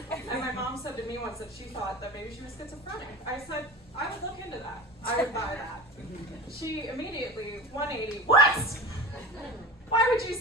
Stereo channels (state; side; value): normal; both; correlation 0.32